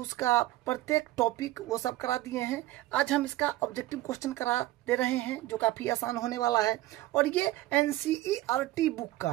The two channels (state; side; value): quieter; left; 16.3 dB